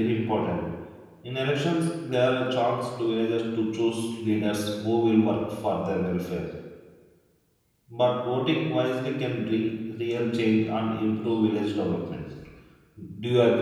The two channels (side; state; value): both; identical; correlation 1.00